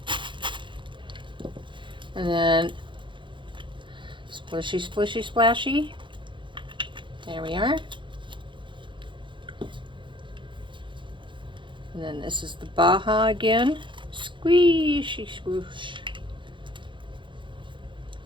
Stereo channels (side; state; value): left; late; 0.23 ms